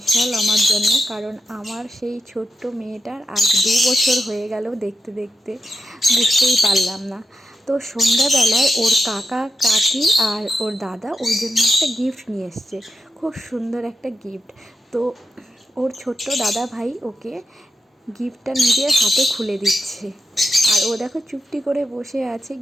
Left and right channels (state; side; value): normal; both; correlation 0.87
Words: আমার জন্য, কারণ আমার সেই ছোট্ট মেয়েটার আজ 2 বছর হয়ে গেল। দেখতে দেখতে বুঝতেই পারলাম না। তো সন্ধ্যাবেলায় ওর কাকা কাকি আর ওর দাদা ওর জন্য একটা গিফট নিয়ে এসছে, খুব সুন্দর একটা গিফট। তো ওর ছোট্ট দাদা ভাই ওকে গিফটটা নিজের হাতে খুলে দিচ্ছে, আর ও দেখো চুপটি করে বসে আছে,